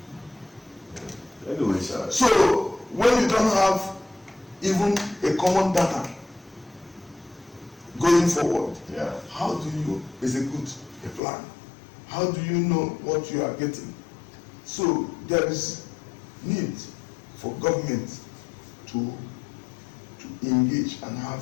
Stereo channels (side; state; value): right; drops out; at 11.2 s